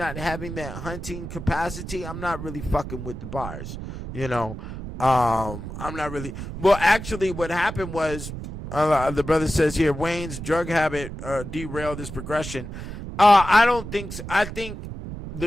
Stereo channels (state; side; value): noise; right; rumble, 9 dB below the sound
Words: having that hunting capacity, I'm not really fucking with the bars. I'm not really. Well, actually, what happened was, the brother says here, Wayne's drug habit derailed his progression. I don't think so. I think